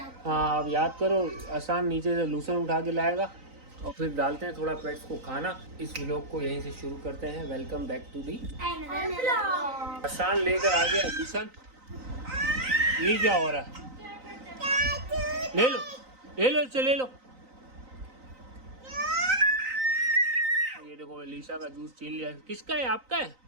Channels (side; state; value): left; late; 3.9 ms